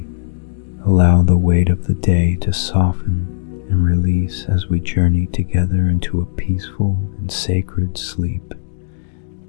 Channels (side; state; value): right; silent; digital silence